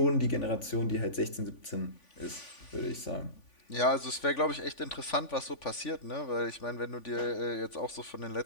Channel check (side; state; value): right; late; 3.5 ms